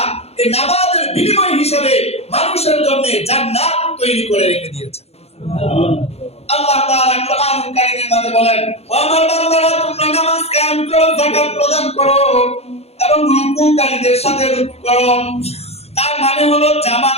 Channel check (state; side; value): late; right; 0.30 ms